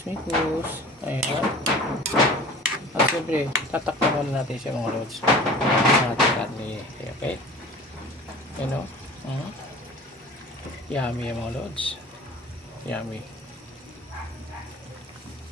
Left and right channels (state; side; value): normal; both; correlation 0.42